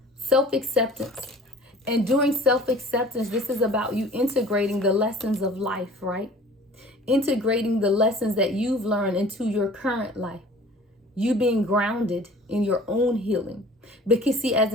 Self-acceptance. And doing self-acceptance, this is about you integrating the lessons of life, right? Integrating the lessons that you've learned into your current life. You being grounded in your own healing. Because see, as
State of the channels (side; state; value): both; normal; correlation 0.47